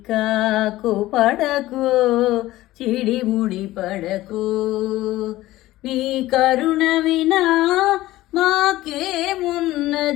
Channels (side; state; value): right; quieter; 16.5 dB